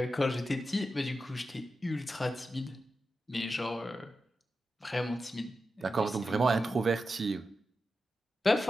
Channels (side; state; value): both; normal; correlation 0.90